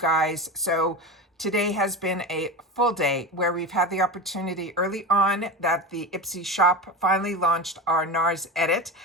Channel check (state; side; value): normal; both; correlation 0.24